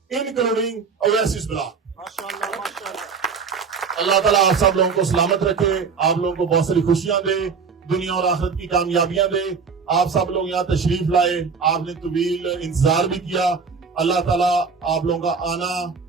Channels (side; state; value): left; quieter; 5.4 dB